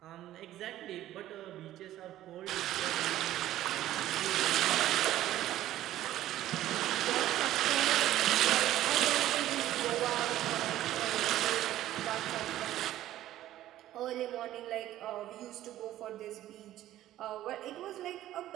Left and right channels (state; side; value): quieter; left; 13.7 dB